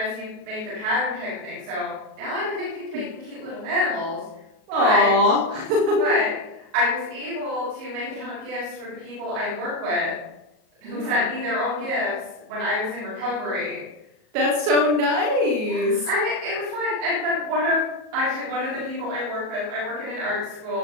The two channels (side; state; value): left; late; 37 ms